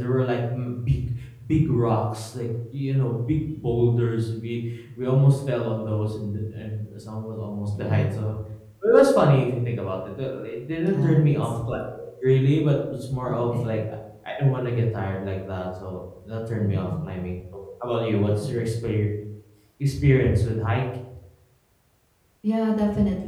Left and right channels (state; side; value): identical; both; correlation 1.00